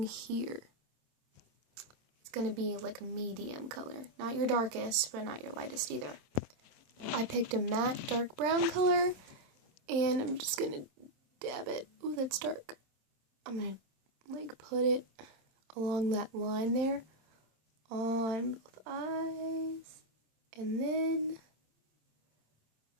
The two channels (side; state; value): left; late; 27 ms